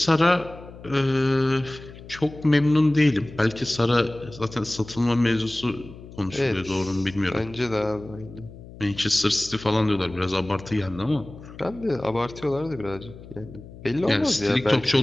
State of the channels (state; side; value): noise; left; hum, 17 dB below the sound